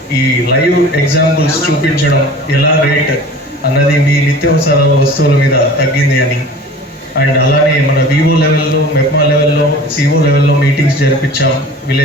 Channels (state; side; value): normal; both; correlation 0.42